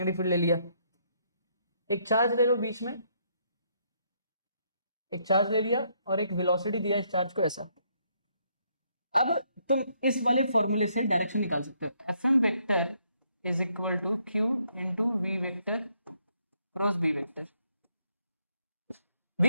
फील्ड ले लिया। एक चार्ज ले लो बीच में, एक चार्ज ले लिया और एक वेलोसिटी दिया इस चार्ज को ऐसा। अब तुम इस वाले फॉर्मूले से डायरेक्शन निकाल सकते हो, F M vector is equal to Q into V vector cross B vector.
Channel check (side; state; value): both; inverted; correlation -0.72